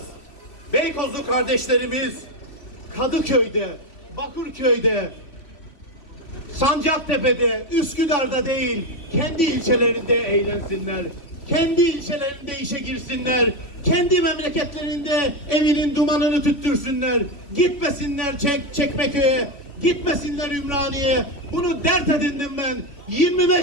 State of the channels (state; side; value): late; right; 3.5 ms